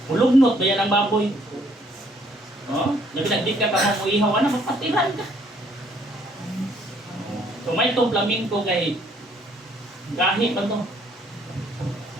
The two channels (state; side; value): normal; both; correlation 0.64